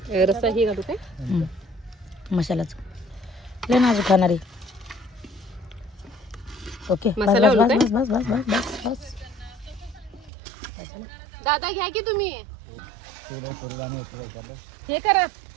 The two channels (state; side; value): drops out; left; at 10.3 s